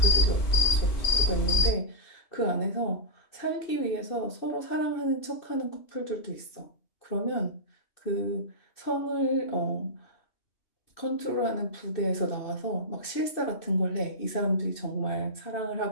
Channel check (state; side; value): late; right; 2.6 ms